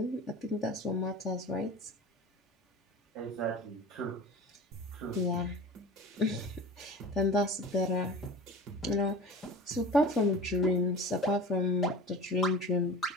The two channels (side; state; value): both; normal; correlation 0.37